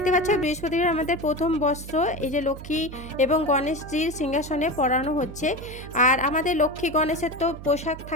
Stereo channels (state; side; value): noise; right; hum, 13 dB below the sound